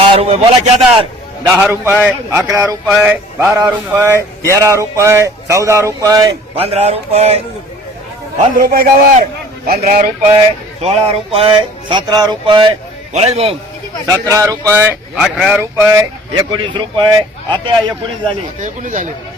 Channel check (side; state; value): both; normal; correlation 0.50